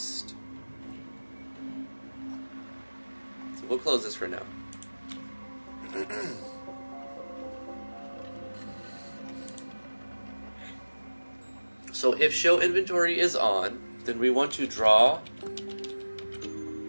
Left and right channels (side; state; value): both; inverted; correlation -1.00